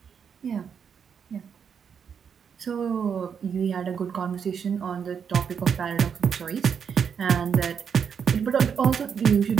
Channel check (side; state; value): left; quieter; 7.1 dB